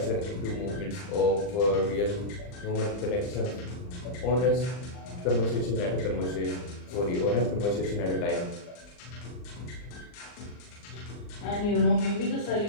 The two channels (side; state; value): right; late; 39 ms